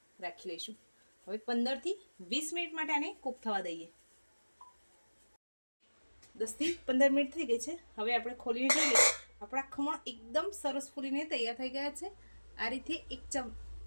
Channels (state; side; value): inverted; both; correlation -1.00